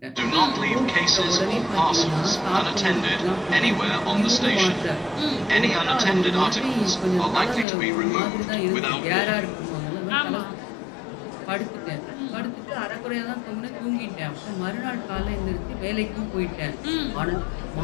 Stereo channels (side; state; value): right; drops out; at 7.7 s